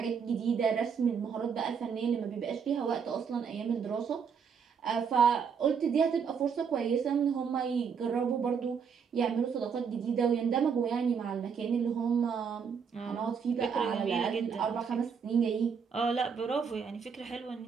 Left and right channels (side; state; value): left; quieter; 6.5 dB